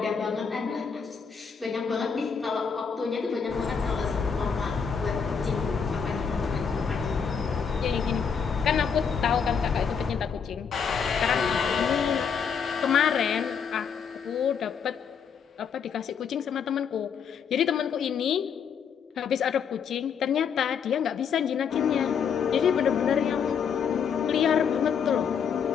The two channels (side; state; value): right; quieter; 6.7 dB